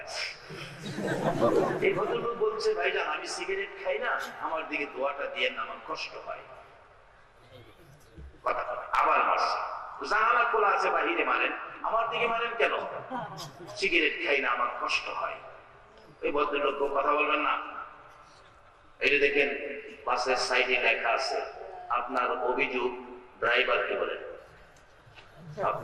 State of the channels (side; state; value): both; identical; correlation 1.00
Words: এই ভদ্রলোক বলছে ভাইজান আমি সিগারেট খাই না, আমার দিকে দোয়াটা দিয়ে না, আমার কষ্ট হয়। কথা আবার মারছে, জানালা খোলা আছে বাহিরে মারেন, আমার দিকে মারেন কেন? সিগারেট খাই না, আমার কষ্ট হয়। এই ভদ্রলোক কথা বলবেন না। এই যে দেখেন বাসের সাইডে লেখা আছে আপনার অভিযোগ ড্রাইভারকে বলেন,